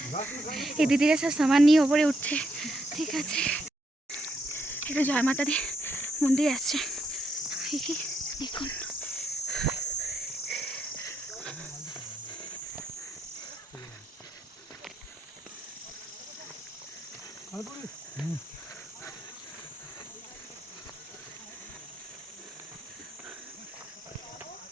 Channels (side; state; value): both; normal; correlation 0.77